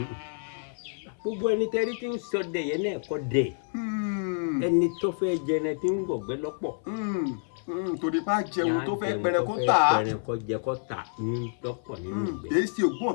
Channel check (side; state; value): right; silent; 59 dB below the other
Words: gbogbo ẹni tẹ́rí tí ń ṣọdẹ yẹn náà kọ́ dẹ̀ ẹni tó fẹ́ jẹrẹ tí ń gbọ̀gbẹ́ lọ́pọ̀. torí bá jẹun tó fẹ́ pẹrẹ kó tà á. pẹrẹ kó jẹ kó tà ní lọ́pọ̀ nínú ìgbẹ́. kì í ṣe